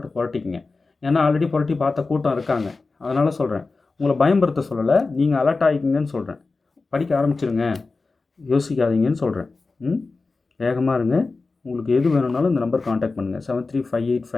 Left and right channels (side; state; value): right; quieter; 3.9 dB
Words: புரட்டிக்குங்க. ஏன்னா ஆல்ரெடி புரட்டி பார்த்த கூட்டம் இருக்காங்க. அதனால் சொல்கிறேன், உங்களை பயம்படுத்த சொல்லலை, நீங்கள் அலர்ட் ஆகிக்கிங்கன்னு சொல்கிறேன். படிக்க ஆரம்பிச்சிருங்க, யோசிக்காதீங்கன்னு சொல்கிறேன். வேகமாக இருங்க. உங்களுக்கு எது வேணும்னாலும் இந்த நம்பர் காண்டாக்ட் பண்ணுங்கள்,